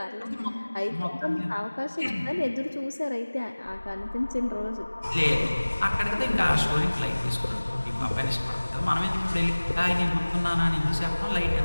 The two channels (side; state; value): both; inverted; correlation -1.00